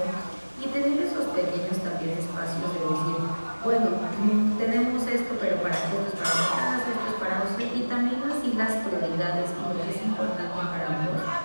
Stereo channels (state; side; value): inverted; both; correlation -1.00